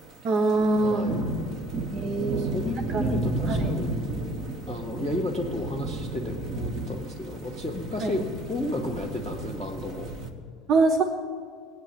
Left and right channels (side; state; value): both; normal; correlation 0.58